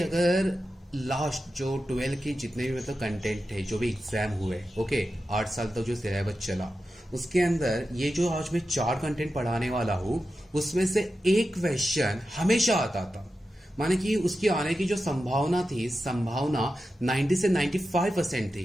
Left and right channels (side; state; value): both; normal; correlation 0.91